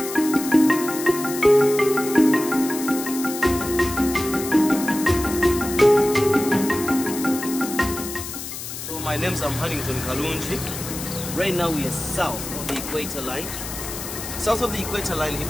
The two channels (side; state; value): left; noise; hiss, 8 dB below the sound